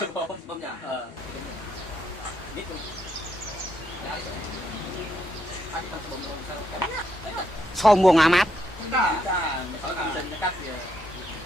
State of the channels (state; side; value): normal; both; correlation 0.77